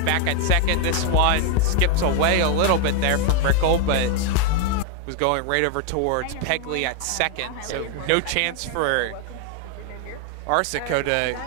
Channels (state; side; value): different; both; correlation 0.00